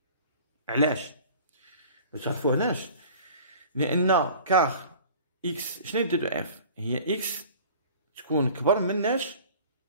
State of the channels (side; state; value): both; inverted; correlation -0.45